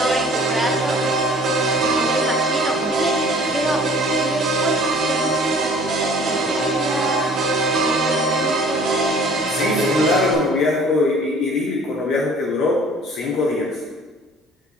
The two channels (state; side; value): normal; both; correlation 0.51